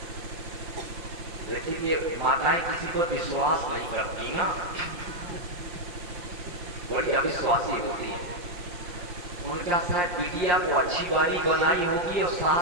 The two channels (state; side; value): late; left; 5.6 ms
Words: लेकिन ये माताएं किसी पर विश्वास नहीं करती ना, बड़ी अविश्वासी होती है। उनका शायद बिटिया को अच्छी बारी बनाई होगी और